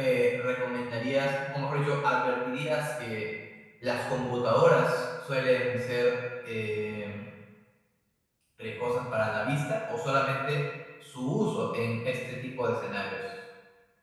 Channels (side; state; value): both; identical; correlation 1.00